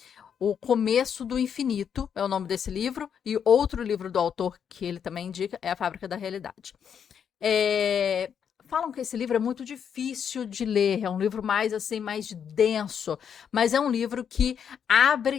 O Começo do Infinito é o nome desse livro, e outro livro do autor que ele também indica é A Fábrica da Realidade. Falam que esse livro é muito difícil de ler, é um livro mais assim, mais denso, mas é um livro que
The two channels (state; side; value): quieter; right; 7.8 dB